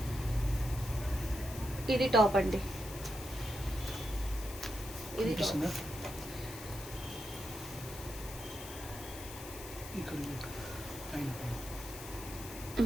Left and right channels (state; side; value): noise; left; hiss, 12 dB below the sound